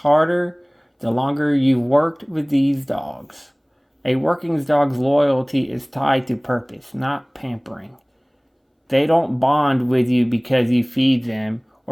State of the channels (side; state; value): both; identical; correlation 1.00